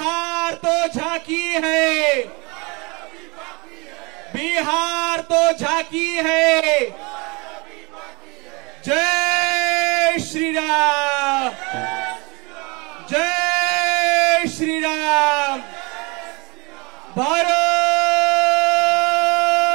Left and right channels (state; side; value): quieter; left; 27.3 dB